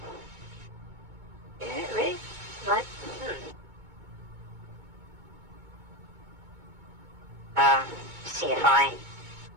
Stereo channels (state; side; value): late; left; 2.2 ms